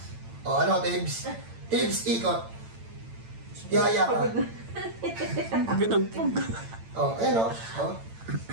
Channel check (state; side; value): late; left; 8.9 ms